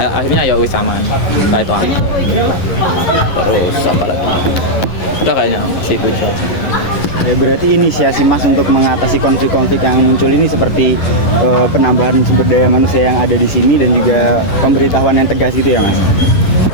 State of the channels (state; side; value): late; right; 11 ms